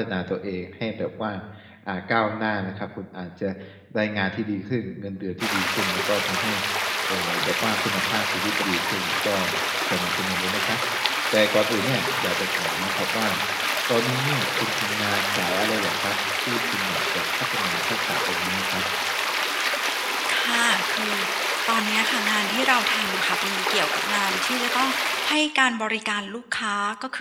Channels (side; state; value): both; identical; correlation 1.00